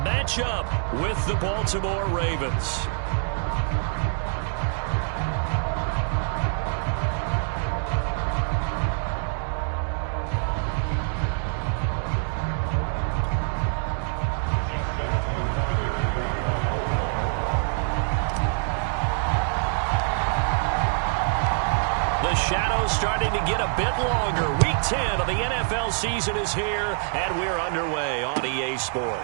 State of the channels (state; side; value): silent; left; 61 dB below the other